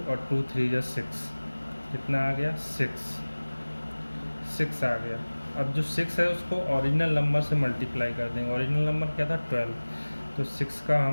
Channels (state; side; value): inverted; both; correlation -1.00